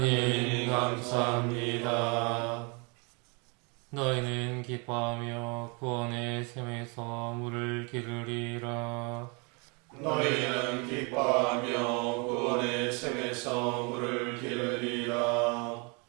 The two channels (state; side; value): quieter; left; 32.1 dB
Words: 감사합니다. 너희는 기뻐하며 구원의 샘에서 물을 기르리라. 너희는 기뻐하며 구원의 샘에서 물을 기르리라.